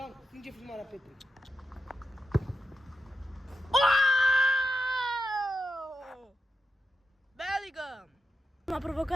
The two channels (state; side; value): normal; both; correlation 0.89